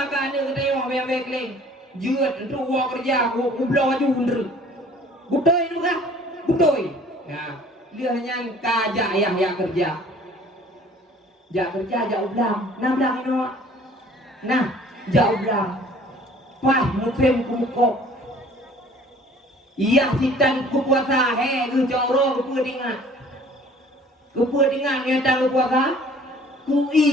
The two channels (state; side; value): normal; both; correlation 0.52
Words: kan anu katanya bayang bekling juat untuk buat kerja aku belau aja undur budoi nu kah budoi nah dia hanya kajak ya kerja jak kerja jak ulang nah ulang ini nah jak ulang pah ngefem kumukok iya hitan kupuasa ku joro kepudingan yang tak kupuasa ku